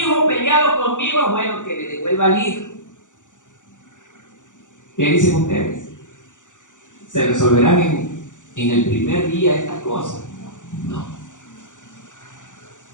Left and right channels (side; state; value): right; late; 0.86 ms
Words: hijo peleado conmigo, bueno, que le devuelva al hijo. ¿Qué dicen ustedes? ¿Se resolverán en el primer día estas cosas? No.